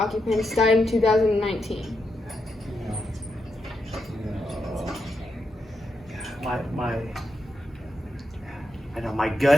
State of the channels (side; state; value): both; normal; correlation 0.84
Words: died in 2019? My